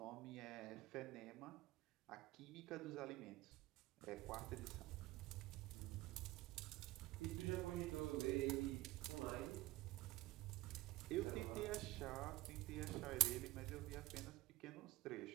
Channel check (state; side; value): quieter; left; 18.1 dB